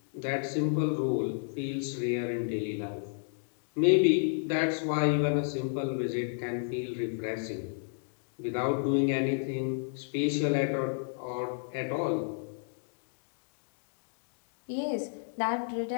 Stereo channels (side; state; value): right; silent; digital silence